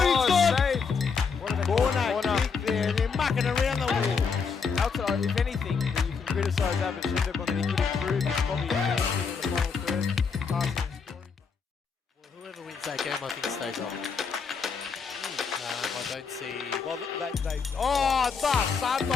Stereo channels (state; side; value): quieter; right; 5.5 dB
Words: Saved. What is corner kick there. They're mucking around the walls. Outside, if anything, you can criticise Abid Shindip on that he could improve. He's probably finishing in the final third, passing and scoring. Well, whoever wins that game, I think, stays on. I don't see... Well, oh,